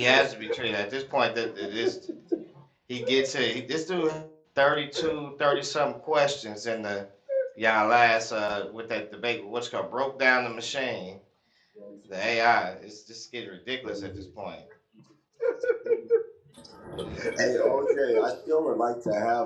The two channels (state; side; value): identical; both; correlation 1.00